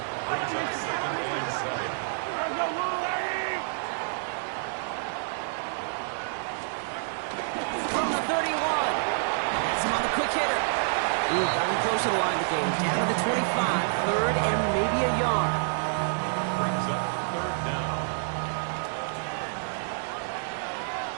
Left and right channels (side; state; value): left; silent; digital silence